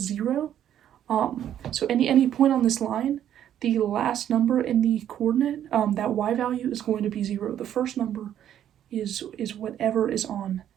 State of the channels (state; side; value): quieter; left; 10.6 dB